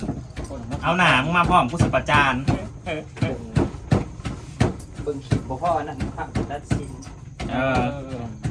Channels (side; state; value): both; identical; correlation 1.00